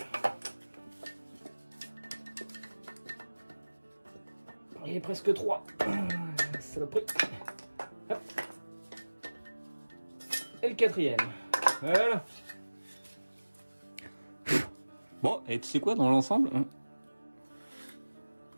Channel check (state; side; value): inverted; both; correlation -1.00